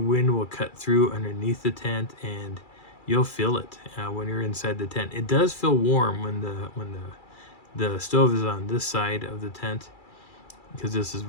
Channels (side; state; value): right; late; 2.3 ms